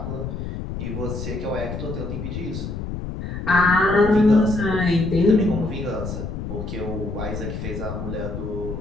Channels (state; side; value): noise; left; rumble, 6 dB below the sound